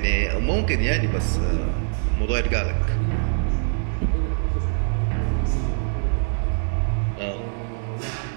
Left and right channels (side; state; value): left; silent; digital silence